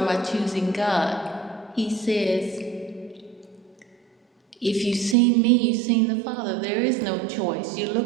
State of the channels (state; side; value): drops out; left; at 5.2 s